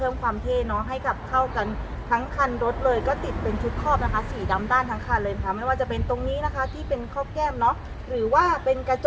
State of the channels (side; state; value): both; identical; correlation 1.00